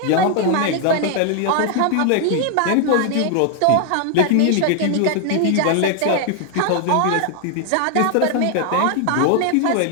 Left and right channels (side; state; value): both; different; correlation 0.00